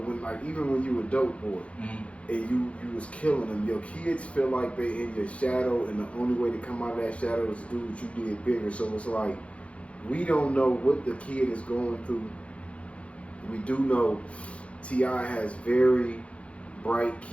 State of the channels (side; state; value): right; late; 0.062 ms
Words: even when you were a dope boy, and you was killing them, your kids feel like they in your shadow, and the only way to come out of that shadow is to do what you did bigger. So it's like, we don't know what the kid is going through. We do know T.I. has very bright